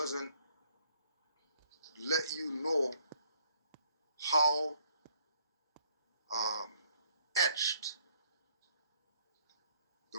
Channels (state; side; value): inverted; both; correlation -0.65